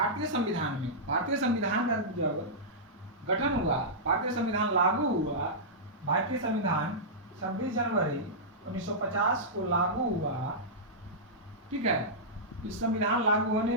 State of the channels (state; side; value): normal; both; correlation -0.13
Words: संविधान का जब गठन हुआ, भारतीय संविधान लागू हुआ, भारतीय संविधान 26 जनवरी 1950 को लागू हुआ। ठीक है। इस संविधान लागू